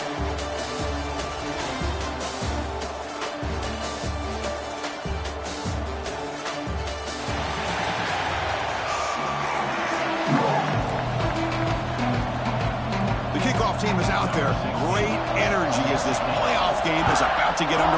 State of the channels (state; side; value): identical; both; correlation 1.00